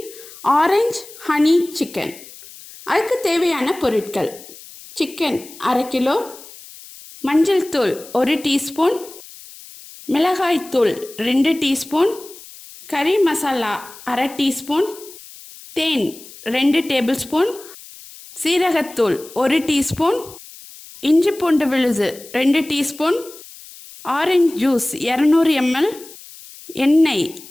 ஆரஞ்சு ஹனி சிக்கன். அதுக்கு தேவையான பொருட்கள்: சிக்கன் 1/2 கிலோ, மஞ்சள் தூள் 1 டீஸ்பூன், மிளகாய் தூள் 2 டீஸ்பூன், கறி மசாலா 1/2 டீஸ்பூன், தேன் 2 டேபிள்ஸ்பூன், சீரகத்தூள் 1 டீஸ்பூன், இஞ்சி பூண்டு விழுது 2 டீஸ்பூன், ஆரஞ்சு ஜூஸ் 200 ml, எண்ணெய்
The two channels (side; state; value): left; noise; hiss, 18 dB below the sound